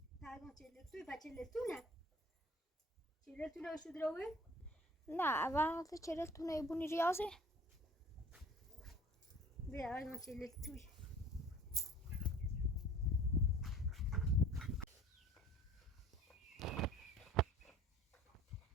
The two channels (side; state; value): both; normal; correlation 0.48